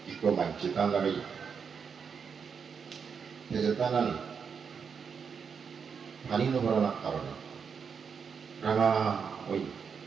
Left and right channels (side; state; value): left; quieter; 6.3 dB